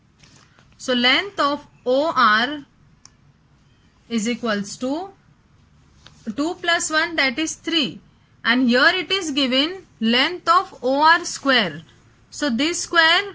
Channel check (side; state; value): both; identical; correlation 1.00